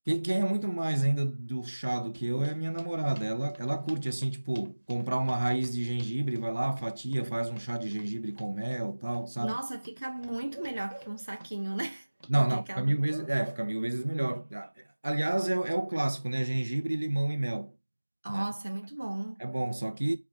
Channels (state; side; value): inverted; both; correlation -1.00